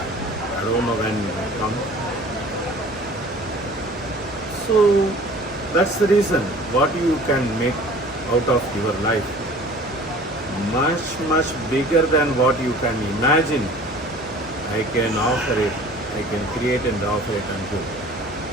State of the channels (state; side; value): normal; both; correlation 0.46